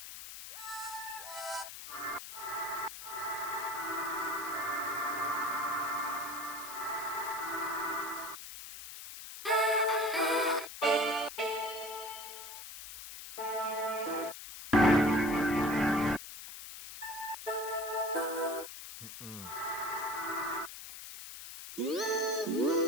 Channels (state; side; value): noise; left; hiss, 11 dB below the sound